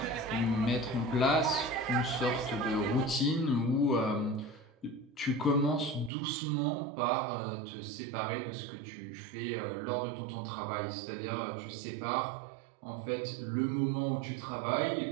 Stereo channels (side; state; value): left; drops out; at 6.1 s